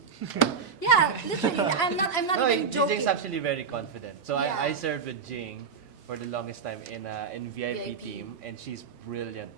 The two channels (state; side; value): quieter; left; 5.9 dB